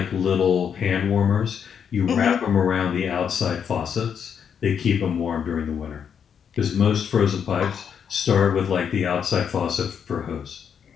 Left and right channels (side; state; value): right; quieter; 7.6 dB